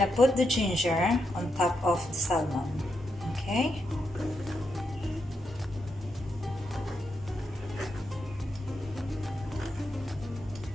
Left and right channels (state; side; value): normal; both; correlation 0.83